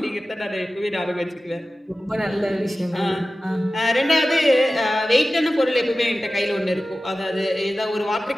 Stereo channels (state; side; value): normal; both; correlation 0.95